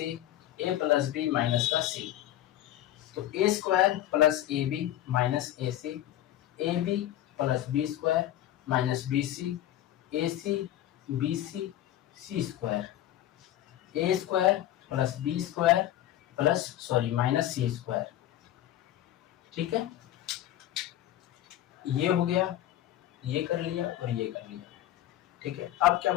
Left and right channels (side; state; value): right; quieter; 13.0 dB